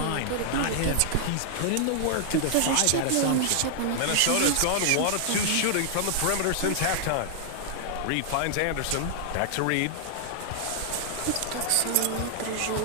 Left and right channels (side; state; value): both; different; correlation 0.00